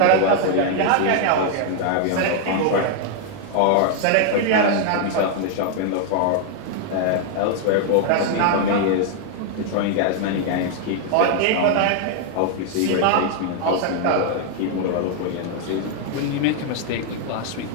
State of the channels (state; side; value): different; both; correlation 0.00